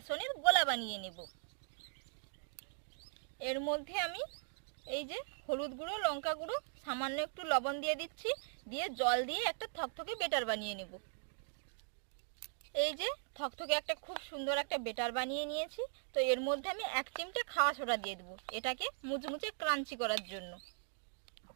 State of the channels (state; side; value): silent; left; digital silence